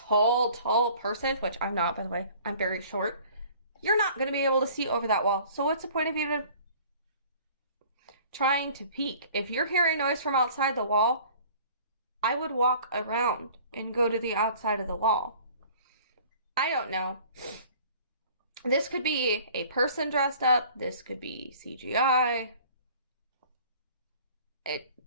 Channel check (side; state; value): both; inverted; correlation -0.50